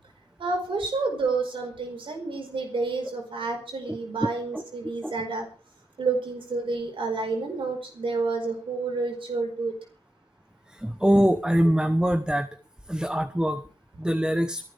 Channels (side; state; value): both; normal; correlation 0.86